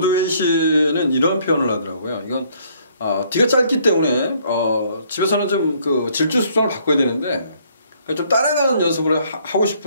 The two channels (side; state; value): both; inverted; correlation -0.64